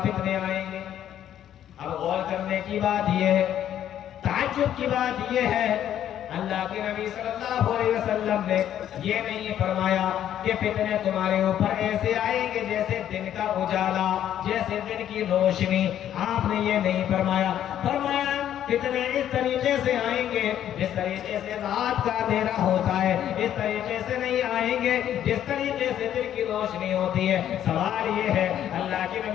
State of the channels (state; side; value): quieter; right; 10.8 dB